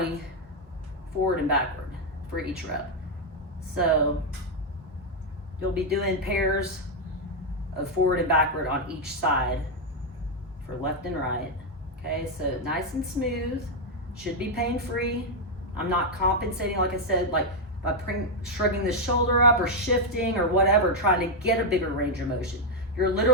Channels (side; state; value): both; normal; correlation 0.01